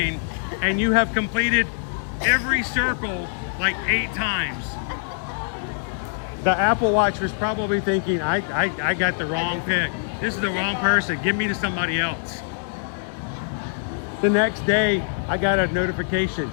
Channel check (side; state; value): right; silent; 63 dB below the other